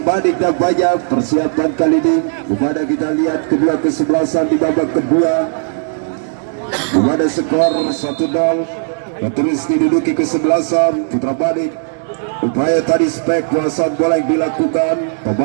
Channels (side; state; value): left; silent; digital silence